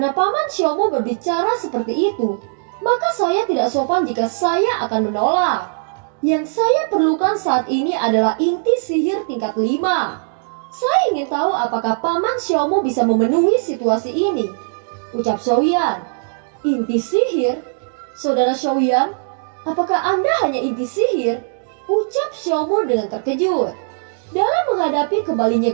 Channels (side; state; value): left; silent; digital silence